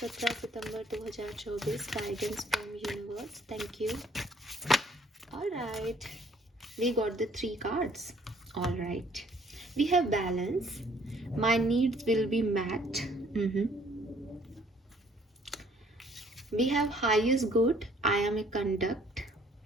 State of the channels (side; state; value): both; normal; correlation 0.61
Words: September 2024, guidance from universe, thank you. Alright, we got the 3 cards. Alright, we have balance, my needs will be met. We have highest good, I am a conduct.